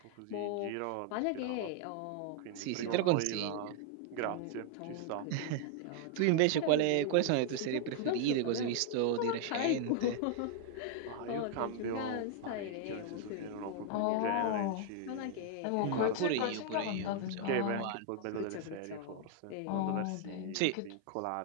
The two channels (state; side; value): different; both; correlation 0.00